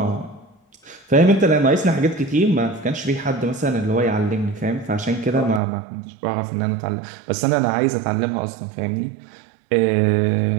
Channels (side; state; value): left; drops out; at 5.6 s